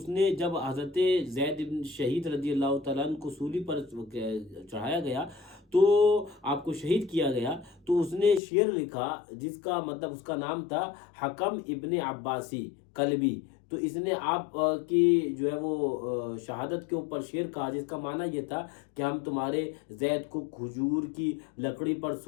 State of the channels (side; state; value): right; drops out; at 8.4 s